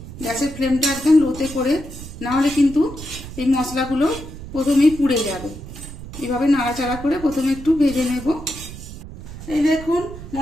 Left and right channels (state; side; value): noise; right; rumble, 13 dB below the sound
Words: গ্যাসের ফ্লেমটা একদম লোতে করে, না হলে কিন্তু এই মশলাগুলো প্রথমেই পুড়ে যাবে। এভাবে নাড়াচাড়া করে প্রথমে একটু ভেজে নেব। এই দেখুন,